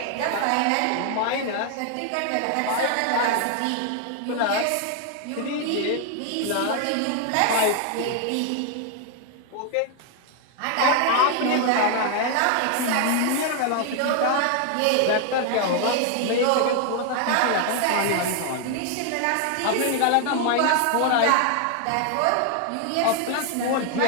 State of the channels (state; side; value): different; both; correlation 0.00